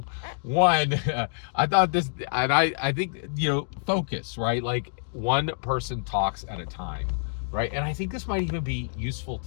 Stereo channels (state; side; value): silent; right; digital silence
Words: one, I thought this, and I think, you know, focus, right? Like, one person talks at a time, right? And I think this might even be useful